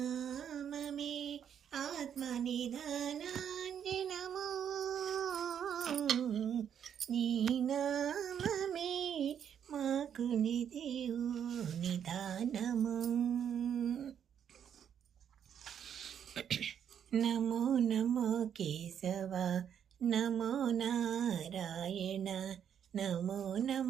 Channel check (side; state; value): left; quieter; 8.7 dB